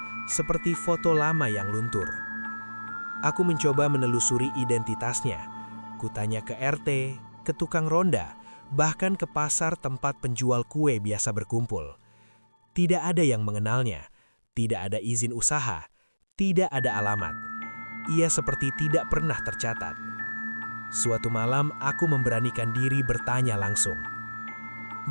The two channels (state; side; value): inverted; both; correlation -1.00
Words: seperti foto lama yang luntur. Aku mencoba menelusuri identitasnya. Kutanya ke RT, ke tukang ronda, bahkan ke pasar tempat penjual kue biasa berkumpul. Tidak ada yang mengenalnya, tidak ada izin usaha, tidak ada alamat. Ia seperti tidak pernah tercatat. Suatu malam aku memberanikan diri bertanya langsung.